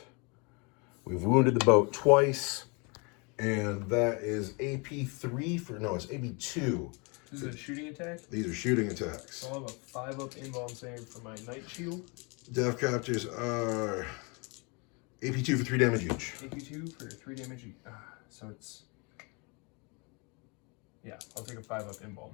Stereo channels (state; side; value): quieter; right; 31.1 dB